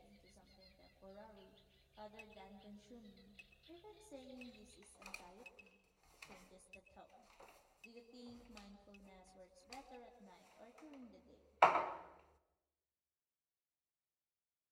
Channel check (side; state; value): both; identical; correlation 1.00